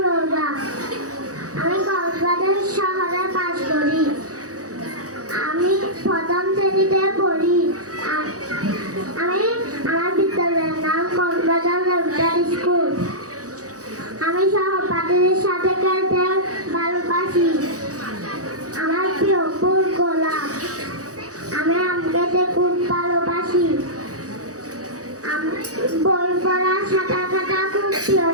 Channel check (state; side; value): late; left; 0.66 ms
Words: রোজা। আমি কক্সবাজার শহরে বাস করি। আমি প্রথম শ্রেণীতে পড়ি। আমার বিদ্যালয়ের নাম কক্সবাজার রেগুলার স্কুল। আমি সহপাঠীদের সাথে খেলতে ভালোবাসি। আমার প্রিয় ফুল গোলাপ। আমি আম খেতে খুব ভালোবাসি। বই পড়া, সাঁতার কাটা খুব প্রিয়